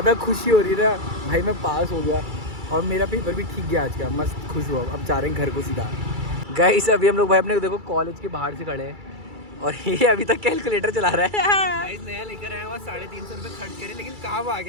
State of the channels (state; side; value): late; left; 2.3 ms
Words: खुशी हो रही है ना भाई, मैं पास हो गया और मेरा पेपर भी ठीक गया आज का। मस्त खुश हुआ। अब जा रहे हैं घर को सीधा। गाइस अभी हम लोग भाई अपने देखो कॉलेज के बाहर से खड़े हैं और ये अभी तक कैलकुलेटर चला रहा है। गाइस नया लेकर आया हुआ 350 रुपए खर्च करे, लेकिन काम आ